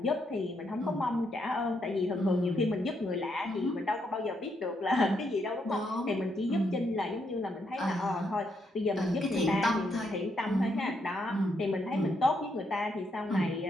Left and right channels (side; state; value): both; normal; correlation 0.78